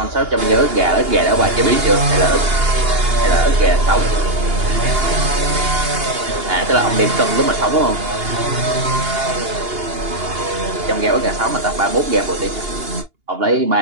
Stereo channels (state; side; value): late; left; 2.8 ms